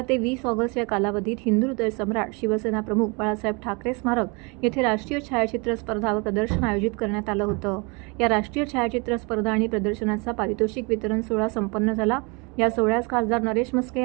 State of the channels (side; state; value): left; quieter; 30.0 dB